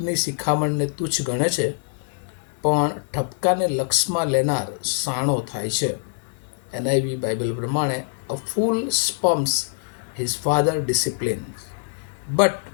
શિખામણને તુચ્છ ગણે છે, પણ ઠપકાને લક્ષમાં લેનાર સાણો થાય છે. એનઆઈવી બાઇબલ પ્રમાણે, a fool spurns his father discipline, but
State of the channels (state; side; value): silent; right; 60 dB below the other